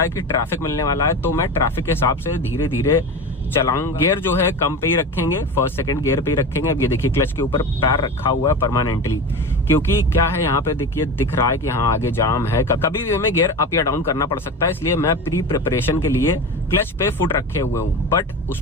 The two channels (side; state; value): both; normal; correlation 0.27